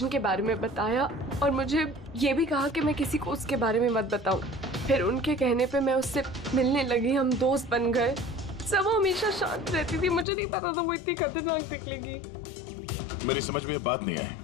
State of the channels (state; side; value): drops out; right; at 10.2 s